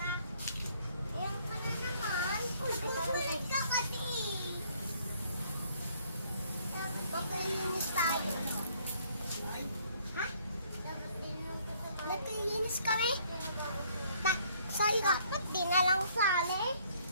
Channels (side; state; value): both; inverted; correlation -0.63